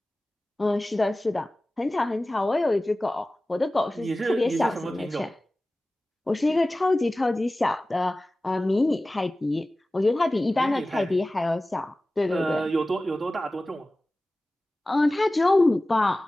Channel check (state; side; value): normal; both; correlation 0.97